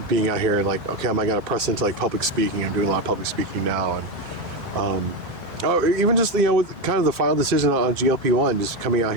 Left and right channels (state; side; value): normal; both; correlation 0.13